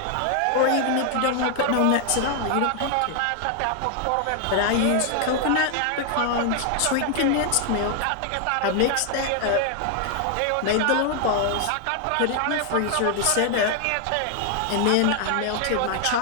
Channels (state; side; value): different; both; correlation 0.00